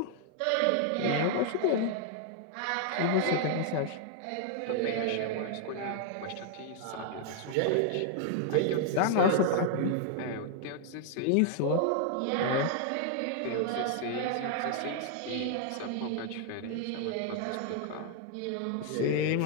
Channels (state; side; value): different; both; correlation 0.00